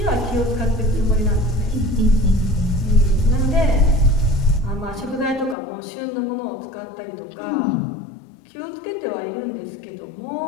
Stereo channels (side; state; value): right; drops out; at 5.6 s